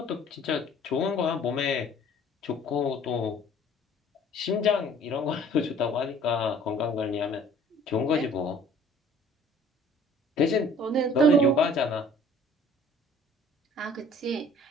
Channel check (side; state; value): both; normal; correlation 0.52